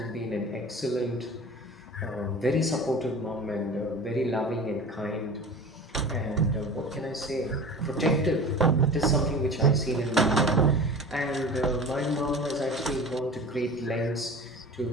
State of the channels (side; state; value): both; normal; correlation 0.37